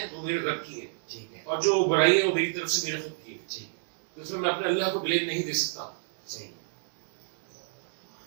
वो मेरे रब की है, ठीक है, और जो बुराई है वो मेरी तरफ से मेरे खुद की है। ठीक, तो इसमें मैं अपने अल्लाह को ब्लेम नहीं दे सकता। सही,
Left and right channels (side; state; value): left; silent; digital silence